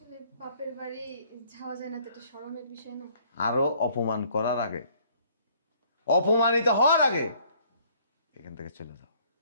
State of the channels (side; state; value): both; inverted; correlation -0.60